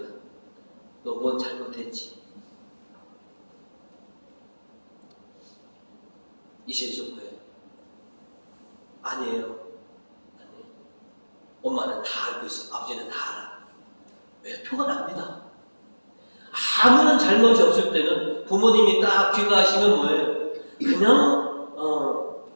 너 뭔 잘못했지? 이제 좀 거예요. 아니에요. 엄마는 다 알고 있어. 아버지는 다 알아. 왜? 표가 납니다. 아무런 잘못이 없을 때는 부모님이 딱 귀가하시면 뭐예요? 그냥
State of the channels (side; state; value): both; inverted; correlation -1.00